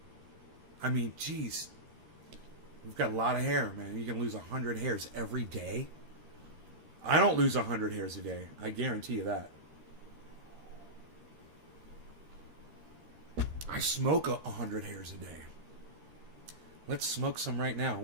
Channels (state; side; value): late; left; 13 ms